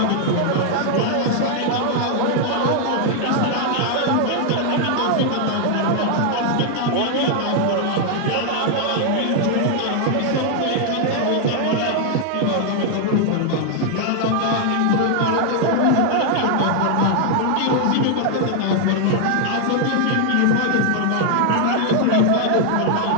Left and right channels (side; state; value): both; different; correlation 0.00